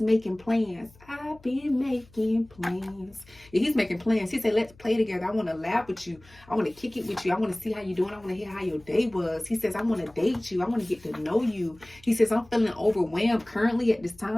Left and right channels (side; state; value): left; noise; hum, 26 dB below the sound